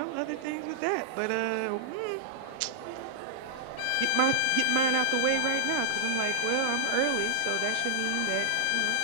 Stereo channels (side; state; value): both; different; correlation -0.02